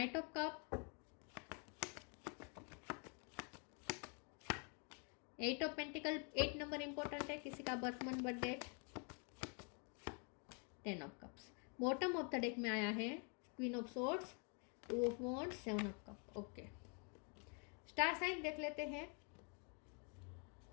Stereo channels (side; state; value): right; quieter; 37.8 dB